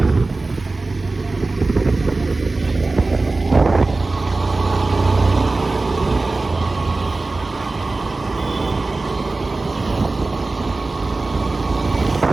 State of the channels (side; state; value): left; quieter; 3.4 dB